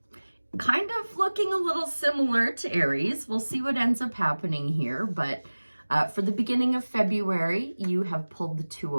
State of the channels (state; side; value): inverted; both; correlation -1.00